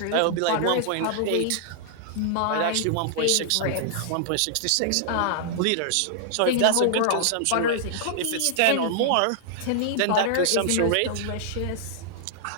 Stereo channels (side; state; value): both; different; correlation -0.01